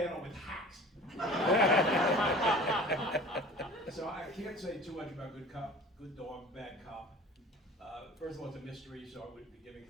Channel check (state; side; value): normal; both; correlation 0.42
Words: with hacks. So I can't say too much about Good Dog, Bad Cop. First of all, it's a mystery, so I wouldn't be giving